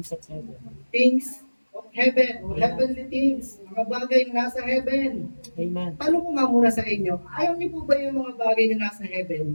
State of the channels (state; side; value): inverted; both; correlation -1.00